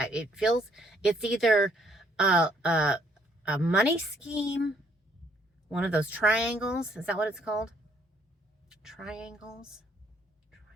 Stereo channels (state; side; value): normal; both; correlation 0.66